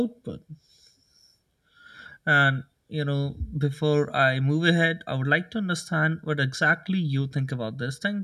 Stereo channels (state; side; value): identical; both; correlation 1.00